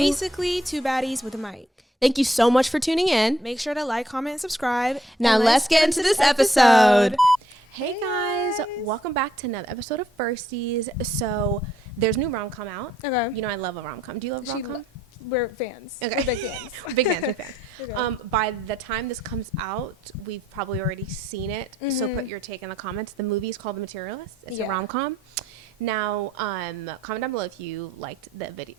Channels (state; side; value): normal; both; correlation 0.70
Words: two baddies with a mic. Thank you so much for tuning in. Make sure to like, comment, and subscribe. Now And let's get into this episode. Hey guys, welcome back to another episode of Firsties. So there's new rom-com out. Okay. You know I love a rom-com. Do you love a rom-com? We're fans. Okay. We're big fans. Big fans, big fans. Okay. By the time this comes out, we've probably already seen it. So put your take in the comments. The movie is called The Materialist. It's a rom-com. Now, comment down below if you liked the